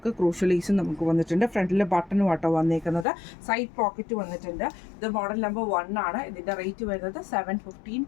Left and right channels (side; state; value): right; drops out; at 3.1 s